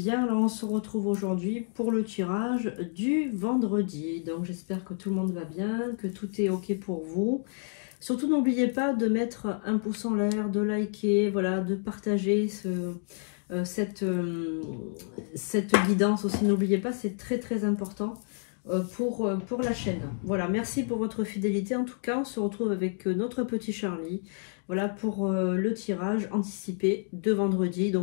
Là, on se retrouve aujourd'hui pour le tirage du vendredi. Donc, j'espère que tout le monde va bien, que tout est OK pour vous. Surtout, n'oubliez pas de mettre un pouce en l'air, de liker, voilà, de partager cette guidance aussi. N'oubliez pas, c'est très, très important pour la chaîne. Voilà, merci pour votre fidélité. En tout cas, on se retrouve avec notre petit Charlie. Voilà pour le tirage anticipé de vendredi.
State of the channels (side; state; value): right; silent; 55 dB below the other